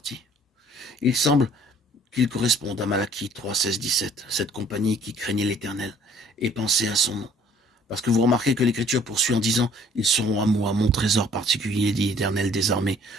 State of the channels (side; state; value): both; normal; correlation 0.57